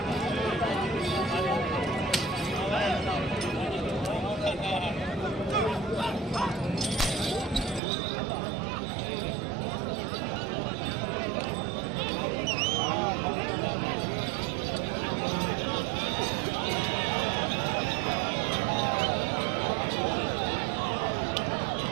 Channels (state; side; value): drops out; left; at 7.8 s